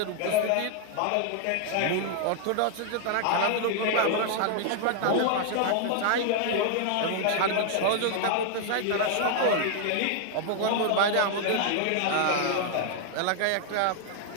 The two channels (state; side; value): different; both; correlation 0.00